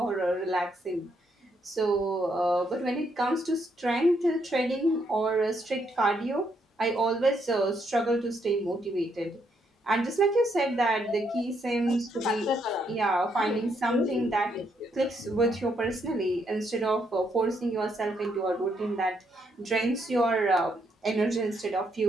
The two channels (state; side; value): normal; both; correlation 0.75